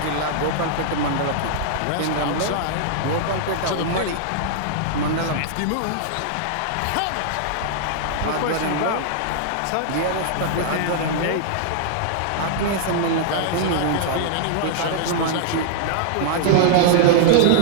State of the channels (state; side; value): different; both; correlation -0.01